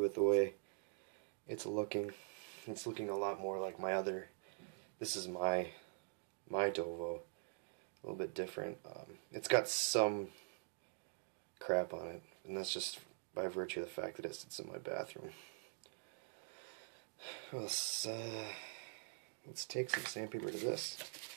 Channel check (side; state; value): left; silent; digital silence